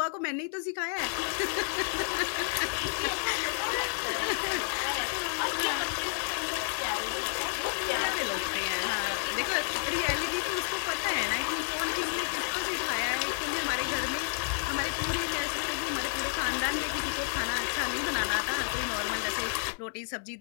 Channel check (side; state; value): right; silent; digital silence